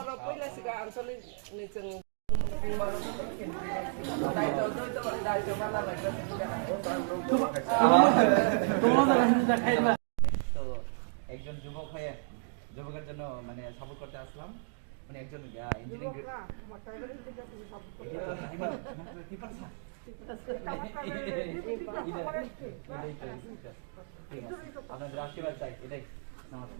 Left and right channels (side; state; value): left; silent; digital silence